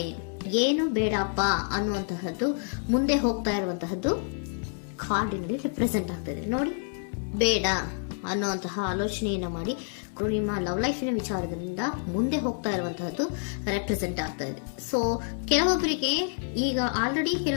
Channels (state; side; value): silent; right; 59 dB below the other